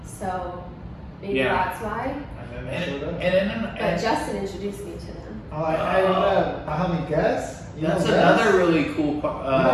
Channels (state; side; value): identical; both; correlation 1.00